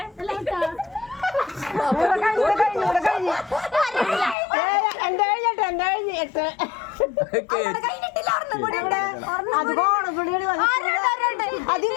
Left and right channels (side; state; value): right; drops out; at 4.4 s